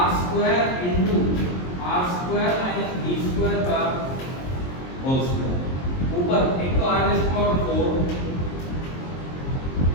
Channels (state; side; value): late; right; 23 ms